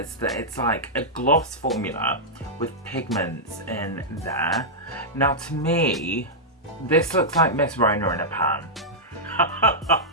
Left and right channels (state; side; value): normal; both; correlation -0.09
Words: that it's like a gloss formula with pigments in there. Now to me, this looks like Miss Rona in a pan.